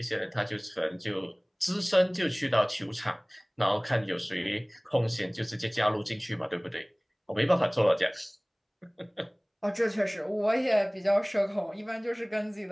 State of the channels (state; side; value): identical; both; correlation 1.00